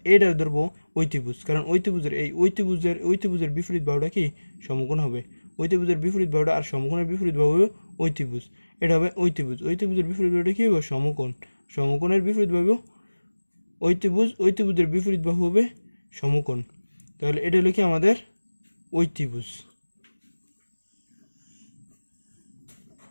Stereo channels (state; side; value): inverted; both; correlation -1.00